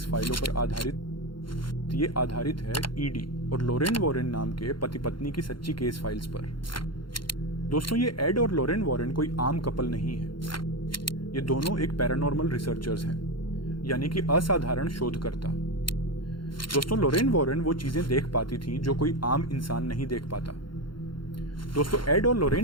फाइलों पर आधारित है ईडी और लोरेन वॉरेन नाम के पति पत्नी की सच्ची केस फाइल्स पर। दोस्तों, ये एड और लोरेन वॉरेन कोई आम कपल नहीं है। ये दोनों एक पैरानॉर्मल रिसर्चर्स हैं, यानी कि असाधारण शोधकर्ता। दोस्तों, लोरेन वॉरेन वो चीजें देख पाती थी जो कोई आम इंसान नहीं देख पाता। दोस्तों, एड और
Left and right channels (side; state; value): right; late; 0.72 ms